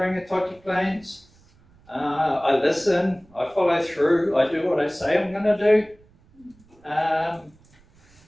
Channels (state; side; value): noise; right; rumble, 30 dB below the sound